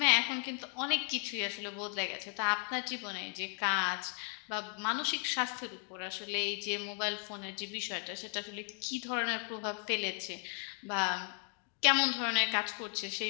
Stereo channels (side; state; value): right; quieter; 36.7 dB